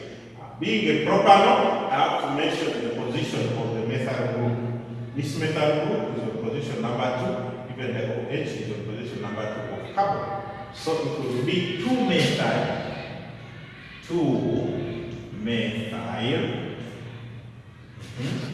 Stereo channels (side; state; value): both; identical; correlation 1.00